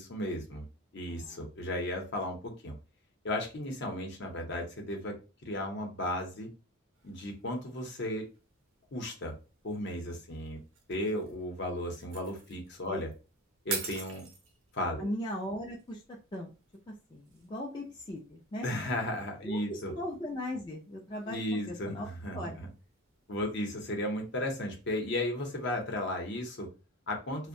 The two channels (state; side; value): normal; both; correlation 0.28